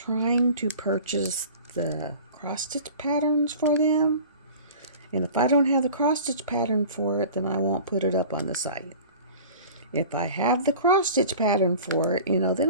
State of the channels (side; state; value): both; inverted; correlation -0.41